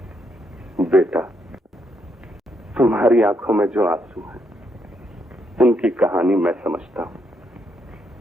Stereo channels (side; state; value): both; normal; correlation 0.77